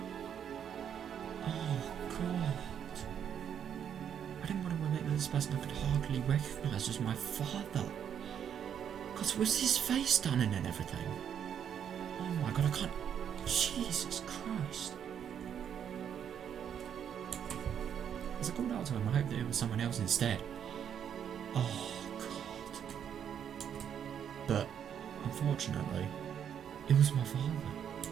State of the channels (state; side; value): quieter; left; 8.6 dB